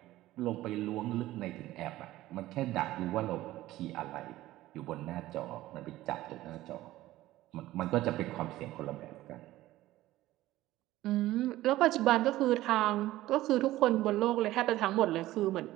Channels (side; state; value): left; quieter; 16.0 dB